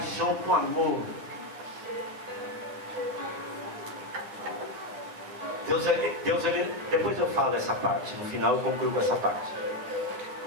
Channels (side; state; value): left; late; 9.8 ms